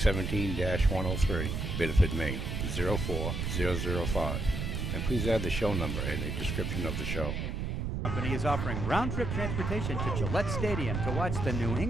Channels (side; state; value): right; noise; rumble, 2 dB below the sound